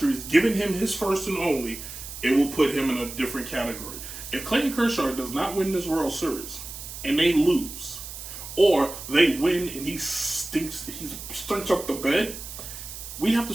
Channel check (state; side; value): noise; right; hiss, 11 dB below the sound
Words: giving him his first and only, it will put him in a different category. If Clayton Kershaw does not win this World Series and they lose, or they win and he stinks up the bed, we have to